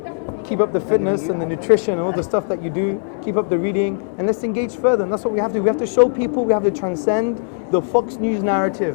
Keep up the fitness and the nutrition and all the stuff that you do. Keep up the reading, and let's engage further. And that's what we have to do. We have to show people, we have to transcend the Fox News narrative.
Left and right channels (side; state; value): right; silent; digital silence